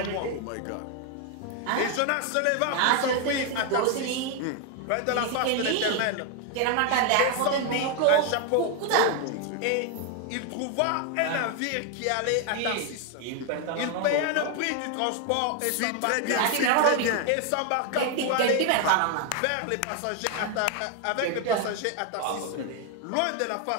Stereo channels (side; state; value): both; different; correlation 0.01